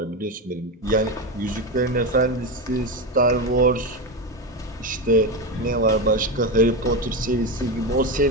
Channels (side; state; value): both; normal; correlation 0.15